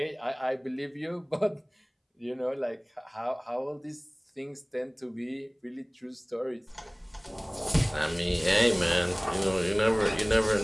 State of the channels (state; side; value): identical; both; correlation 1.00